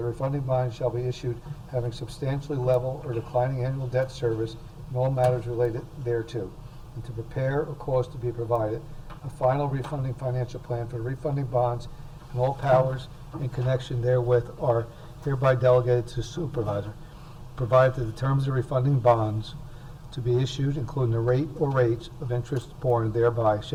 refunding bonds shall be issued having substantially level or declining annual debt service and all matters related thereto, and to prepare or cause to be provided a final refunding financial plan for the refunding bonds, and all powers in connection therewith are hereby delegated to the supervisor, provided that the terms of refunding bonds to be issued, including the rate or rates of interest borne thereby,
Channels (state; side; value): identical; both; correlation 1.00